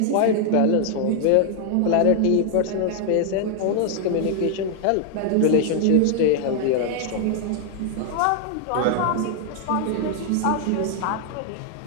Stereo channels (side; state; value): both; different; correlation 0.00